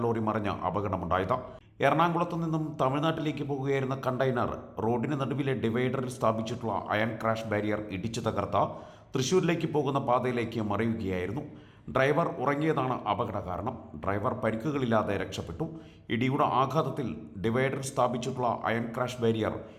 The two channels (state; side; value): identical; both; correlation 1.00